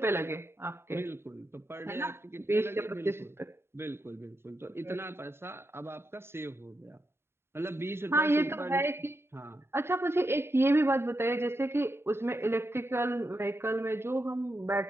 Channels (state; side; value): late; left; 0.12 ms